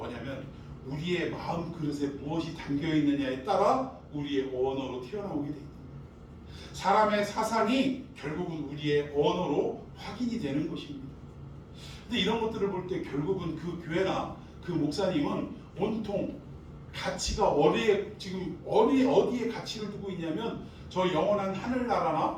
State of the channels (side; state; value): both; identical; correlation 1.00